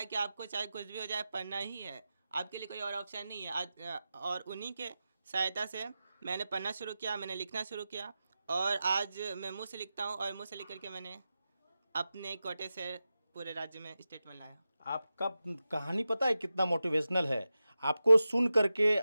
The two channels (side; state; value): both; inverted; correlation -0.93